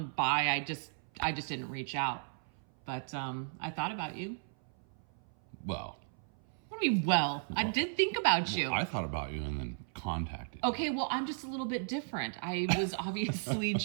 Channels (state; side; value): silent; left; 54 dB below the other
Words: by. I just didn't reach out. But I thought about you. Well. What do you mean, well? I did think about you. I thought about you and then contacted you. Okay, well, I'm just a little bit different. I was obviously